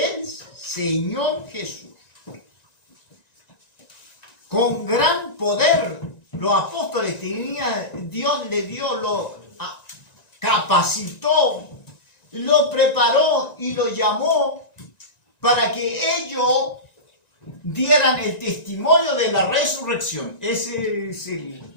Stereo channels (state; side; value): late; right; 1.9 ms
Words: Señor Jesús. Con gran poder los apóstoles tenían, Dios le dio, lo capacitó, lo preparó y lo llamó para que ellos dieran el testimonio de la resurrección. Ese es el